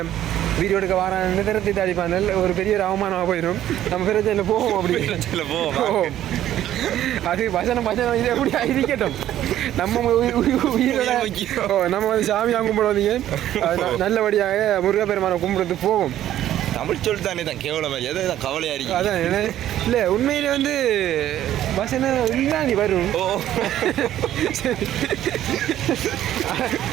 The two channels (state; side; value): quieter; left; 12.3 dB